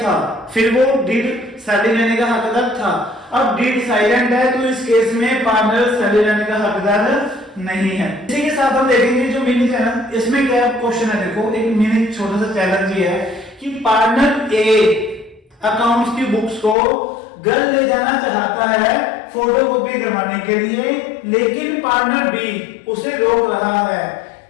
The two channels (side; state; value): right; drops out; at 16.8 s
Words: फिर वो डीड सैलरी लेने का हकदार था। अब डीड साइलेंट है, तो इस केस में पार्टनर सैलरी लेने का हकदार नहीं है। इसी के साथ हम देखेंगे जो मिनी है ना, इसमें क्या क्वेश्चन है, देखो एक मिनी छोटा सा चैलेंज ये है कि पार्टनर ए अकाउंट्स की बुक्स को घर ले जाना चाहता है फोटोकॉपी करवाने के लिए, लेकिन पार्टनर बी उसे रोक रहा है।